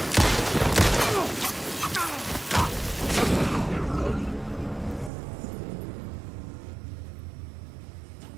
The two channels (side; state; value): left; drops out; at 5.1 s